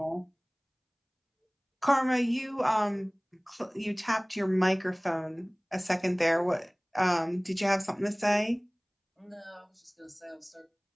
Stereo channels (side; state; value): both; identical; correlation 1.00